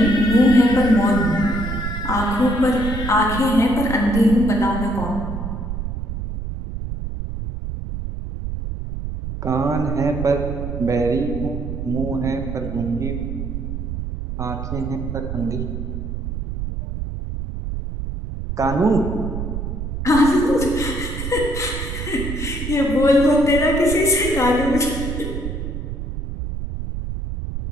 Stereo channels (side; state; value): right; noise; rumble, 5 dB below the sound